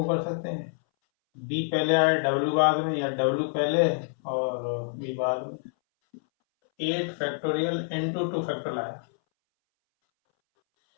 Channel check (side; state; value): right; silent; 60 dB below the other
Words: कर सकते हैं, बी पहले आए डब्ल्यू बाद में, या डब्ल्यू पहले और बी बाद में। 8 फैक्टोरियल इंटू 2 फैक्टोरियल आया।